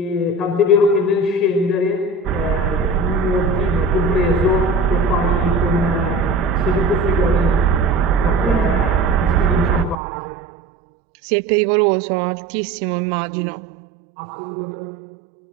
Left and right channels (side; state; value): left; drops out; at 10.0 s